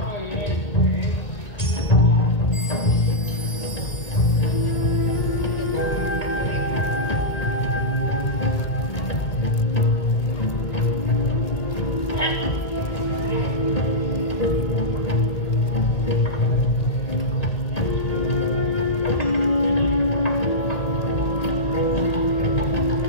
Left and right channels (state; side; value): late; right; 1.9 ms